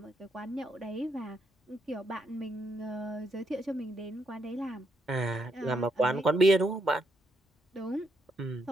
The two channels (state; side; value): normal; both; correlation 0.77